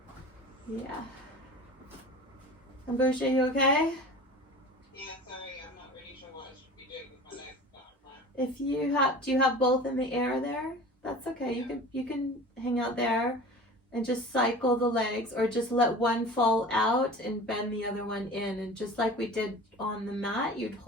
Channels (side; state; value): both; normal; correlation 0.38